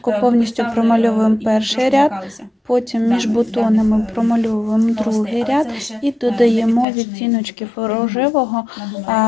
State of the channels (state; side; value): drops out; right; at 6.9 s